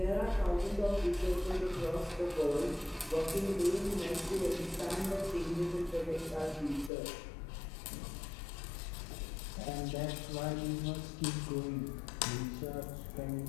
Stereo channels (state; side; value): drops out; right; at 6.9 s